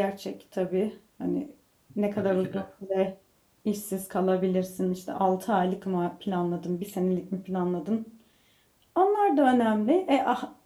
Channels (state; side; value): identical; both; correlation 1.00